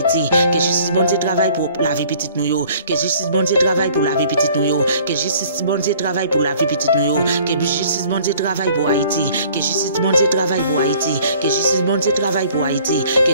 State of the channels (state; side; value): inverted; both; correlation -0.54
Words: que justice bon Dieu travaille pour la vie petite nous yo, que justice bon Dieu travaille pour la vie petite nous yo, que justice bon Dieu travaille pour la vie petite nous yo, que justice bon Dieu travaille pour Haïti, que justice bon Dieu travaille pour Haïti, que justice bon Dieu travaille pour Haïti, que